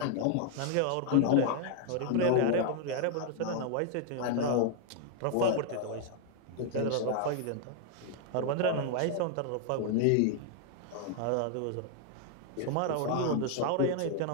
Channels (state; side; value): different; both; correlation 0.00